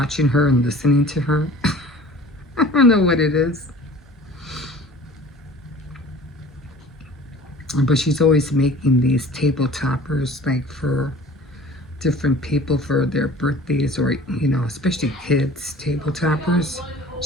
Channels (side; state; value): both; normal; correlation 0.45